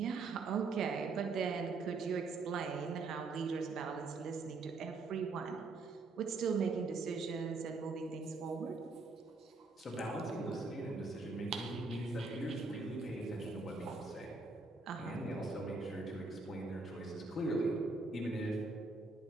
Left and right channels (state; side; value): quieter; left; 3.7 dB